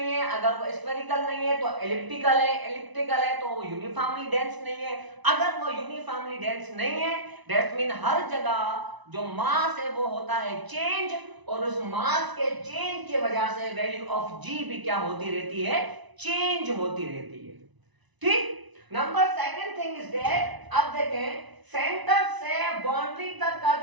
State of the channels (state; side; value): late; left; 1.0 ms